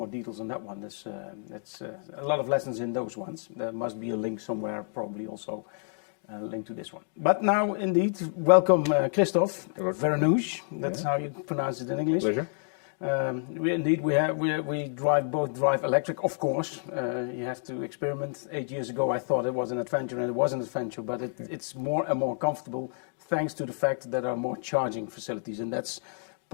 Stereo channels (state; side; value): silent; right; digital silence